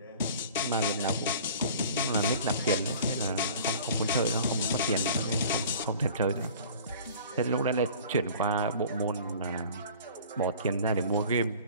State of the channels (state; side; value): inverted; both; correlation -0.45